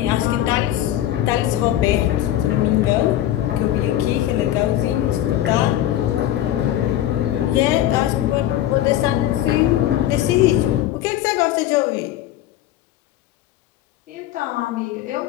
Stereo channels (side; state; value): right; quieter; 12.9 dB